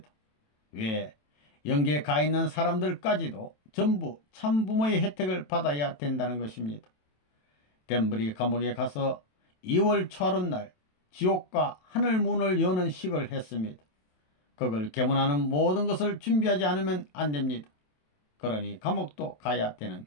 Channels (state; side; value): late; right; 27 ms